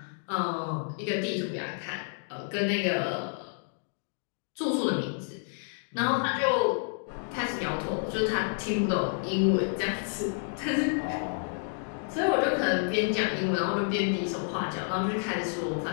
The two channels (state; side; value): silent; right; 58 dB below the other